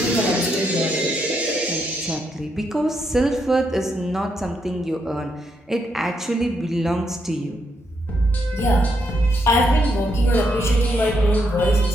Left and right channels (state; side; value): normal; both; correlation 0.78